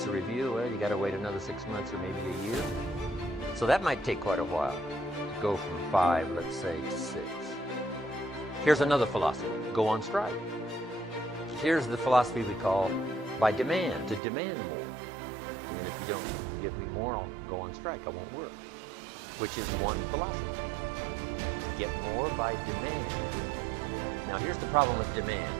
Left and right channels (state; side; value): drops out; left; at 14.2 s